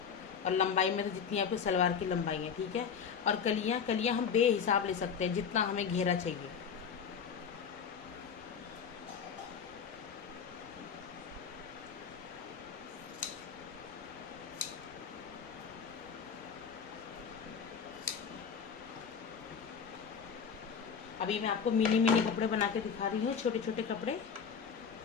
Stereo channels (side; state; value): right; quieter; 6.8 dB